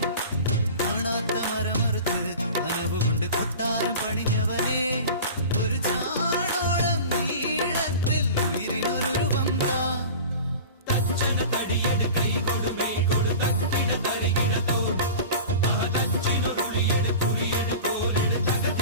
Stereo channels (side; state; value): both; inverted; correlation -0.36